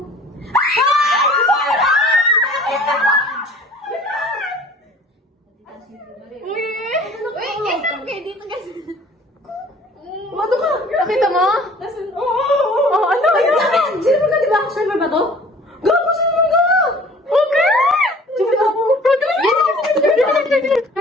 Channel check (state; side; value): normal; both; correlation 0.50